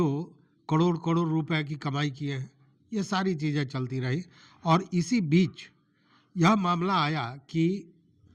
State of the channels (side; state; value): both; identical; correlation 1.00